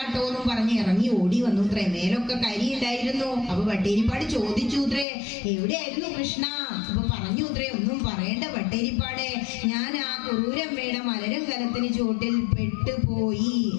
എന്നും പറഞ്ഞ് ഇറങ്ങി ഓടി വന്നുത്രേ. മേലൊക്കെ കരി ഉണ്ടായിരുന്നു. അപ്പൊ പട്ടേരിപ്പാട് ചോദിച്ചുത്രേ, എവിടെയായിരുന്നു കൃഷ്ണ? അപ്പൊ പറഞ്ഞുത്രേ, ഒന്നും പറയേണ്ട പട്ടേരിപ്പാടെ, ഞാൻ ആ കുറൂരമ്മയുടെ മലരും കലത്തിന് ചുവട്ടിൽ പെട്ടുപോയി.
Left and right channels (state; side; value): drops out; right; at 5.1 s